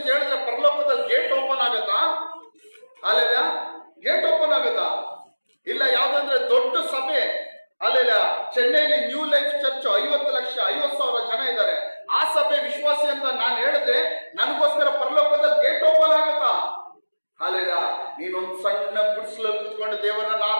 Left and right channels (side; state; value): both; inverted; correlation -1.00